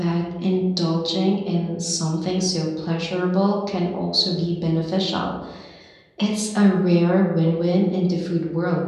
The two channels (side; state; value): both; identical; correlation 1.00